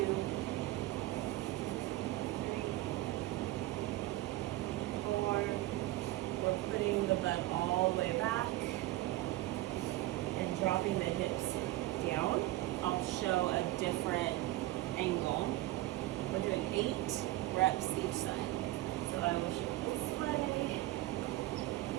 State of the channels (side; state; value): left; quieter; 17.0 dB